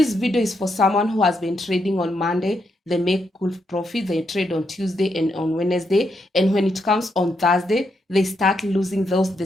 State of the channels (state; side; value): normal; both; correlation 0.80